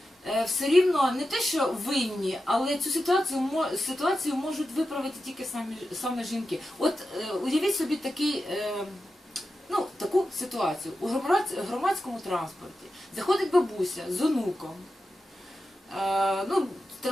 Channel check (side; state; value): both; normal; correlation 0.91